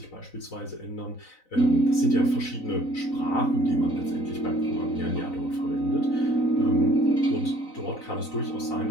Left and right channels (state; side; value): late; right; 4.0 ms